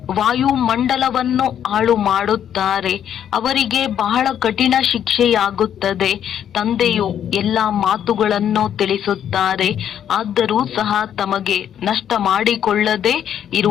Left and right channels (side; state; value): right; quieter; 9.6 dB